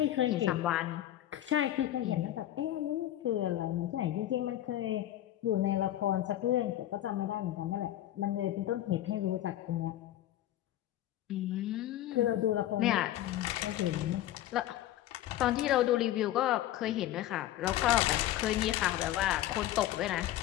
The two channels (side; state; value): right; quieter; 13.3 dB